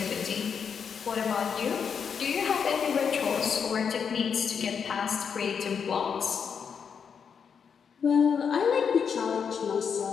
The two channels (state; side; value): quieter; right; 6.7 dB